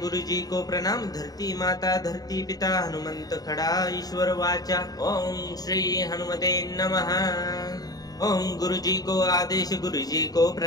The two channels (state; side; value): late; right; 0.18 ms